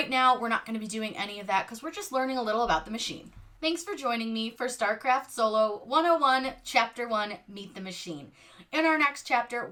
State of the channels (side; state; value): both; identical; correlation 1.00